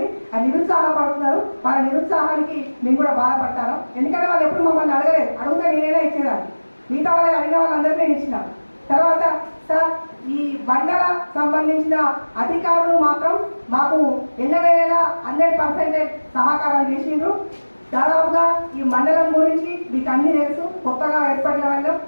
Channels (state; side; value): inverted; both; correlation -1.00